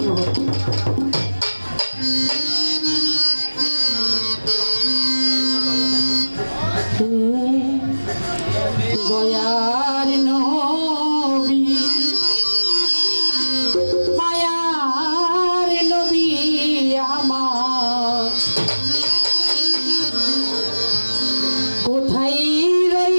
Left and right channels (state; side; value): inverted; both; correlation -1.00